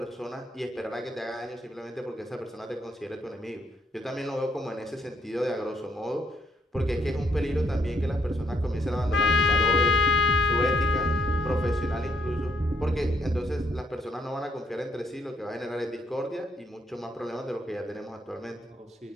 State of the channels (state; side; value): normal; both; correlation 0.72